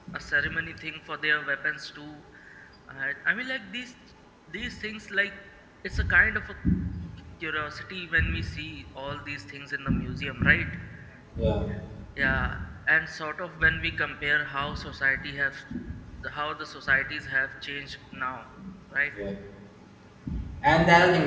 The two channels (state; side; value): identical; both; correlation 1.00